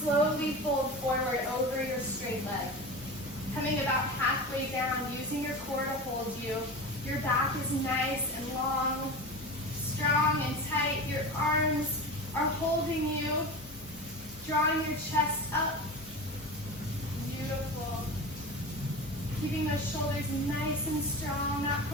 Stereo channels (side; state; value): both; normal; correlation 0.29